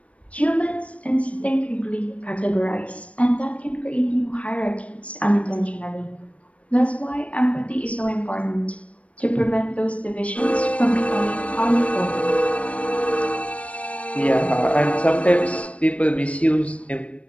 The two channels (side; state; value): right; late; 0.064 ms